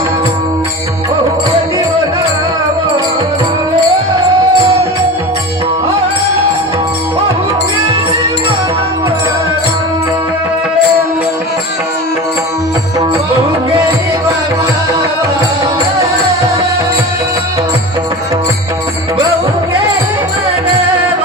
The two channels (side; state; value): both; normal; correlation 0.31